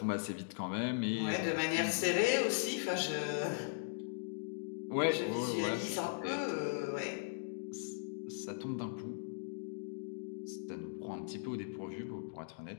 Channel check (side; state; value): right; silent; digital silence